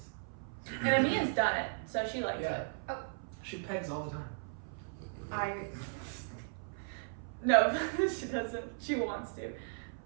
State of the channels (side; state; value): left; silent; 54 dB below the other